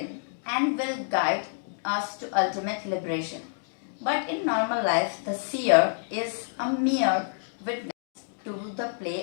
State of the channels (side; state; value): right; silent; digital silence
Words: and will guide us to ultimate liberation. But in normal life, the seer is a mere witness to the